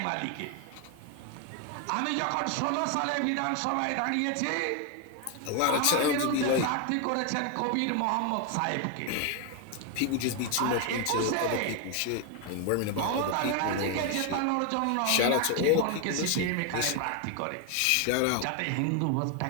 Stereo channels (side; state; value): both; different; correlation 0.01